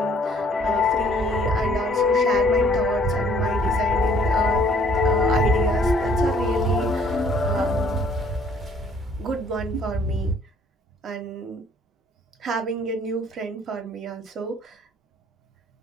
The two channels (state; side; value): normal; both; correlation 0.60